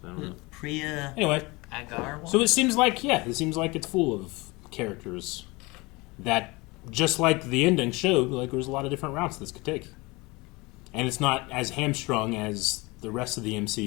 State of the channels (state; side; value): quieter; right; 24.4 dB